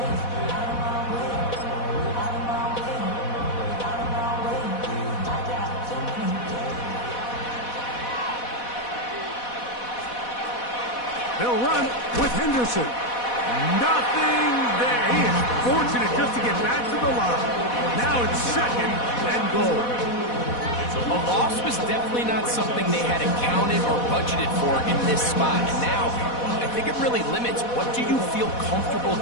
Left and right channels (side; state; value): right; late; 4.1 ms